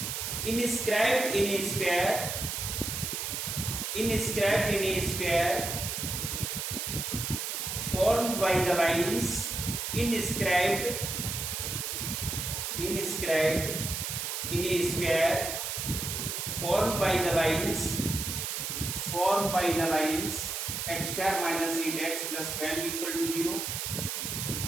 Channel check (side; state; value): right; noise; hiss, 3 dB below the sound